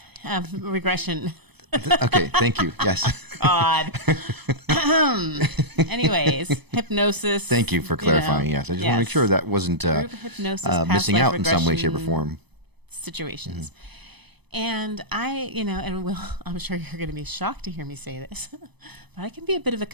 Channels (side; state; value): left; late; 0.99 ms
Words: regression. Okay, thank you. Yes. God. Anyways, hypnosis. Thank you for clarifying. Yes, I just want to make sure that wasn't Group hypnosis, past missing life out in some way, shape, or regression form. situations. And I, and Will, I'm sure you're going to be shocked to hear me say this, but I can be a bit of a